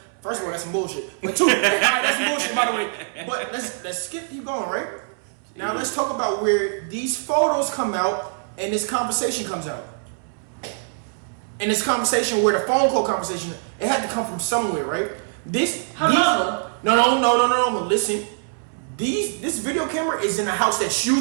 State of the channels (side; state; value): left; silent; 63 dB below the other